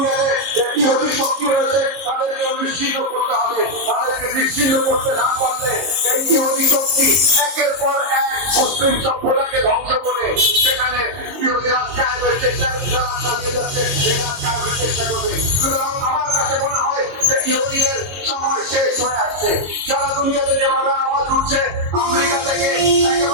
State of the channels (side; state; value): left; late; 22 ms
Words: ইহুদি শক্তি রয়েছে, তাদেরকে নিশ্চিহ্ন করতে হবে। তাদেরকে নিশ্চিহ্ন করতে না পারলে এই ইহুদি শক্তি একের পর এক মুসলিম সভ্যতাকে ধ্বংস করে সেখানে ইহুদি রাজ কায়েমের চেষ্টা চালিয়ে যাচ্ছে, এই রাজ কায়েমের চেষ্টা করবে। সুতরাং আমার কাছে মনে হয় যে ইহুদিদের সময় শেষ হয়ে আসছে। সারা দুনিয়াতে যেভাবে আওয়াজ উঠছে, আমেরিকা থেকে